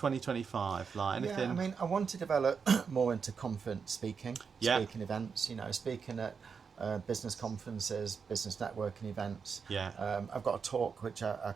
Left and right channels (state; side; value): quieter; left; 5.9 dB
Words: Like anything? Yeah, I mean, I want to develop more into conference speaking, Yeah. speaking events. You know, speaking at business conferences, business networking events. Yeah. I've got a talk which I